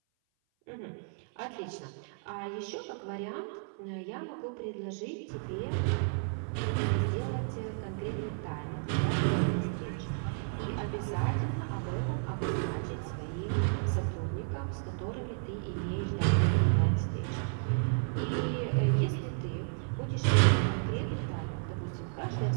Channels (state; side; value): silent; left; 56 dB below the other